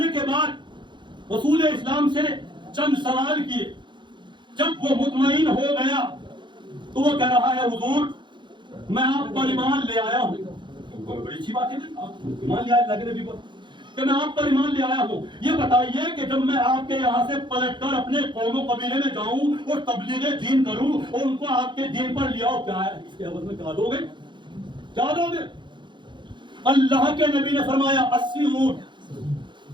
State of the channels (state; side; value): late; left; 0.23 ms